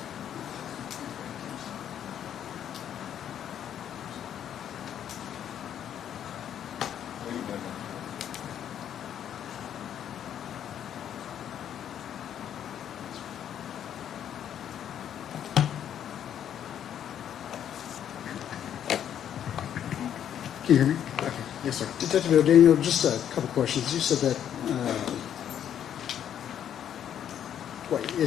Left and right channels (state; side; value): quieter; right; 9.7 dB